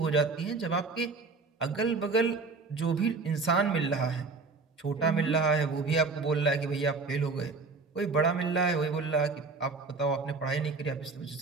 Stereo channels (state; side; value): quieter; left; 4.2 dB